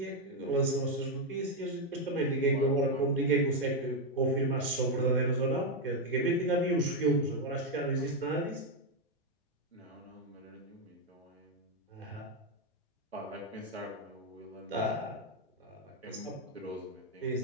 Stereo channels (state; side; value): normal; both; correlation 0.03